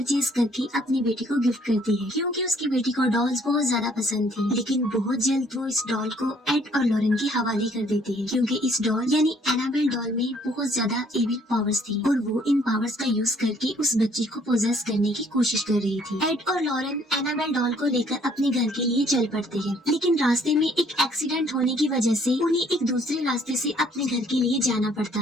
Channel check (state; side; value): normal; both; correlation 0.63